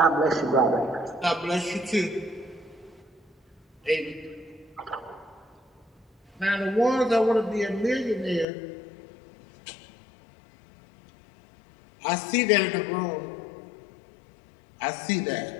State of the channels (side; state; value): right; drops out; at 8.5 s